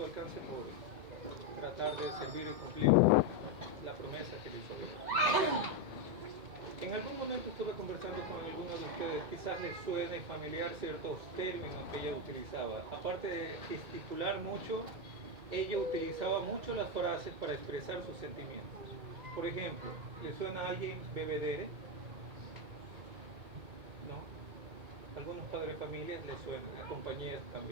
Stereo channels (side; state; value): left; late; 2.2 ms